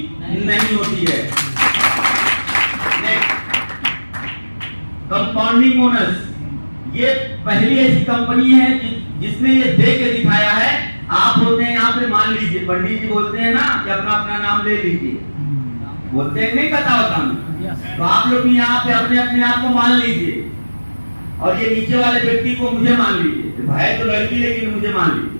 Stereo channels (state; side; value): inverted; both; correlation -1.00